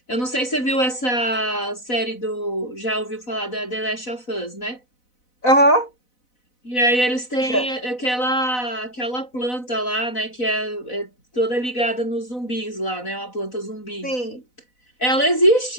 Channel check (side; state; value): right; late; 4.0 ms